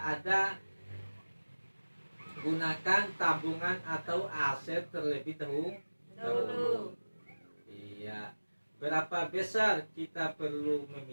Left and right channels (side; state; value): both; inverted; correlation -1.00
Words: ada, gunakan tabungan atau aset terlebih dahulu. Iya. Berapa besar kita perlu